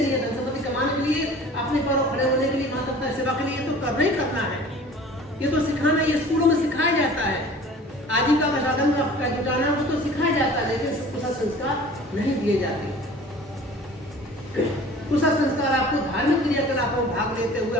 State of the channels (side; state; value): both; normal; correlation 0.45